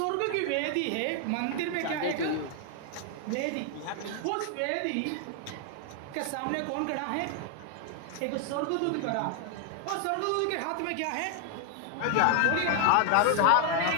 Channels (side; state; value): both; different; correlation 0.00